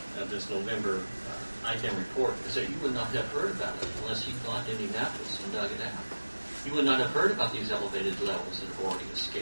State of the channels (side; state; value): both; inverted; correlation -1.00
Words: of this November IDEM report is that you would not have heard about it unless you gone to Indianapolis and dug it out. You would not have heard about these elevated levels that have already